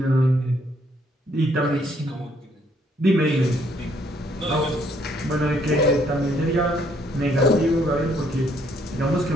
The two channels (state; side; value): normal; both; correlation 0.68